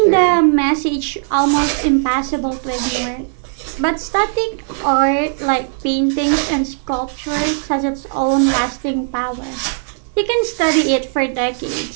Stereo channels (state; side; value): silent; left; digital silence